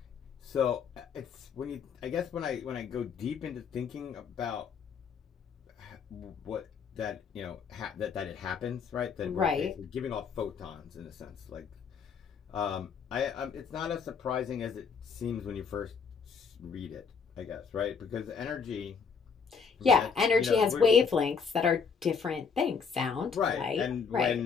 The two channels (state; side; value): quieter; right; 5.9 dB